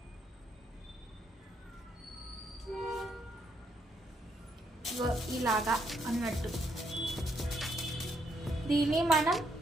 ఇలాగా అన్నట్టు దీన్ని మనం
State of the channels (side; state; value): both; normal; correlation 0.75